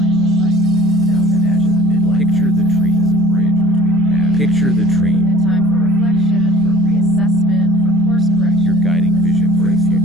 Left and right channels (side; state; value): both; normal; correlation 0.49